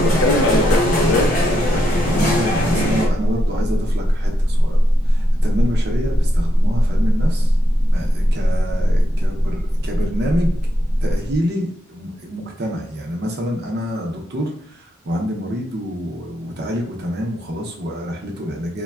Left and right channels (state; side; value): normal; both; correlation 0.81